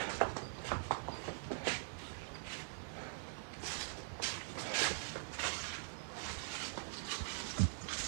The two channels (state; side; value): silent; left; digital silence